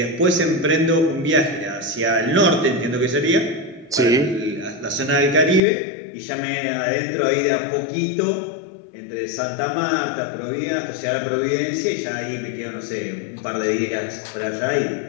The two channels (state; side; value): drops out; right; at 5.6 s